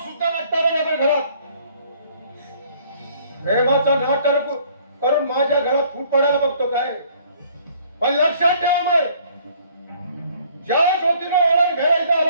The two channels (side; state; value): both; inverted; correlation -0.59